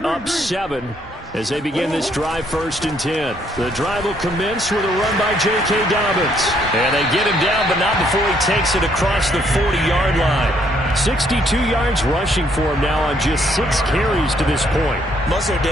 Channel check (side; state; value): both; normal; correlation 0.69